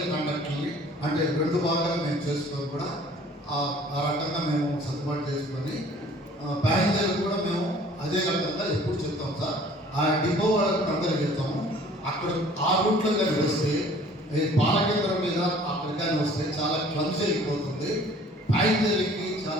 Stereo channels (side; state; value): both; normal; correlation 0.52